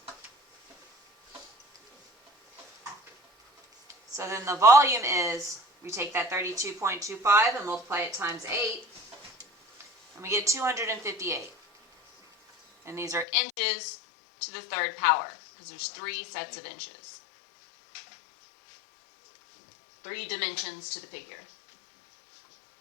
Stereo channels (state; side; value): drops out; right; at 13.2 s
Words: So then the volume is, we take that 32.25 and multiply it times 8, and we get 258. And these are inches to the third power, because there's 3 sets of inches. 3 dimensions to the figure.